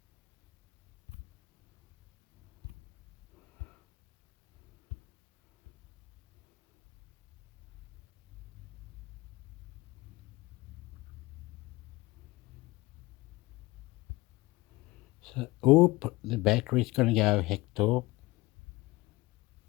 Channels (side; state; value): right; quieter; 20.8 dB